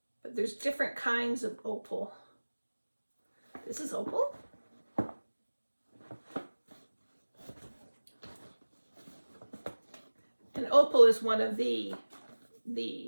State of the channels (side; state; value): both; inverted; correlation -1.00